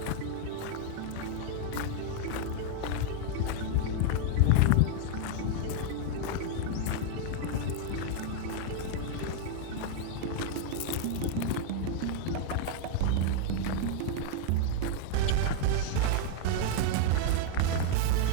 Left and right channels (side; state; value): both; different; correlation 0.00